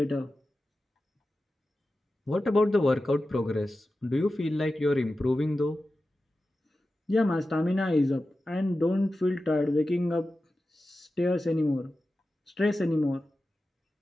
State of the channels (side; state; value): both; normal; correlation 0.93